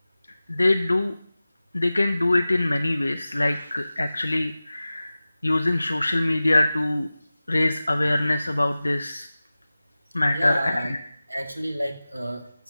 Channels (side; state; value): both; inverted; correlation -0.97